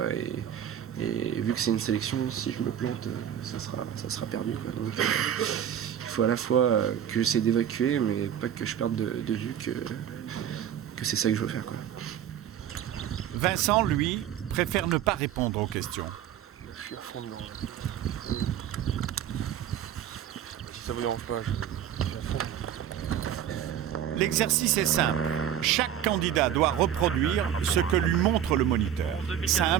Et vu que c'est une sélection, si je me plante, ça sera perdu, quoi. Donc, il faut à la fois que j'essaie d'évacuer, mais pas que je perde de vue que c'est ça que je veux faire, quoi. Vincent, lui, préfère ne pas répondre aux questions. Je suis à fond dedans. Si ça vous dérange pas, je suis à fond. L'exercice est simple. Chaque candidat doit reproduire ce que lui montre le moniteur.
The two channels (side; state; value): left; quieter; 9.9 dB